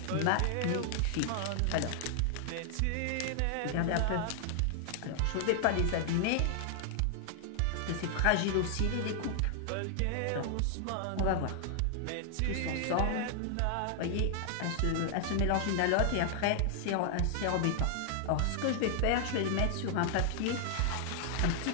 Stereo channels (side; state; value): both; different; correlation 0.00